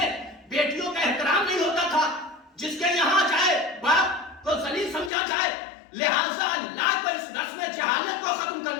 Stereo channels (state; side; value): drops out; right; at 5.1 s